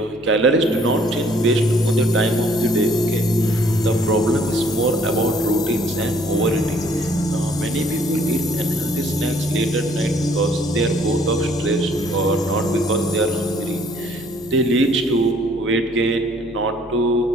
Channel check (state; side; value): normal; both; correlation 0.61